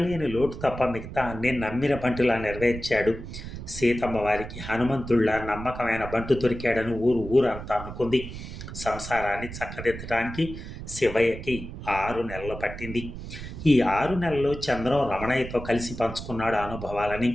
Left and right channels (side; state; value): right; noise; rumble, 10 dB below the sound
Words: లేని లోటు తప్ప మిగతా అన్నీ నమ్మిన బంటులా నెరవేర్చాడు. సీతమ్మ వారికి హనుమంతుళ్ళ నమ్మకమైన బంటు దొరికాడని ఊరంతా అనుకుంది. సంసారాన్ని చక్కదిద్దడానికి శివయ్యకి 6 నెలలు పట్టింది. ఈ 6 నెలల్లో చంద్రం రమణయ్యతో కలిసి పంచుకున్నాడు ఆ అనుభవాలని.